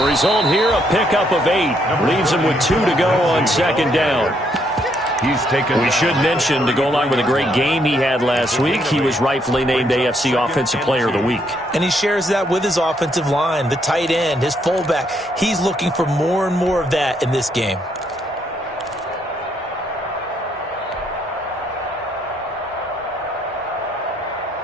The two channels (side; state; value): both; normal; correlation 0.73